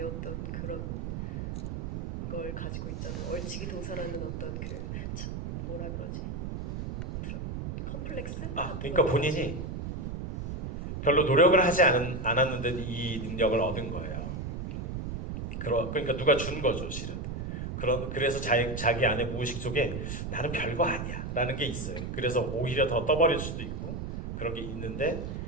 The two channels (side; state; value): right; noise; rumble, 5 dB below the sound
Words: 어떤 그런 걸 가지고 있잖아요. 얼치기 도사라는 어떤 뭐라 그러지? 컴플렉스? 그러니까 본인이 별로 노력을 하지 않았는데 이 능력을 얻은 거예요. 그러니까 누가 준 거죠, 실은. 그래서 자기 안에 무의식 속에 나는 별거 아니야 라는 게 있어요. 그래서 오히려 더 떠버릴 수도 있고 그런 게 있는데,